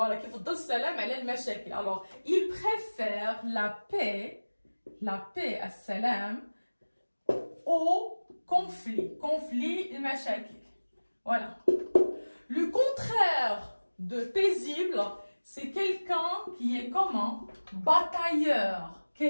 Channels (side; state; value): both; inverted; correlation -1.00